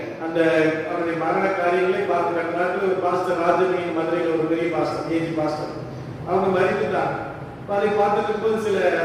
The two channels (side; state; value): both; identical; correlation 1.00